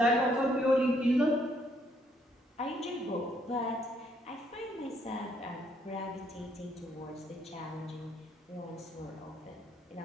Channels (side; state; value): both; normal; correlation 0.70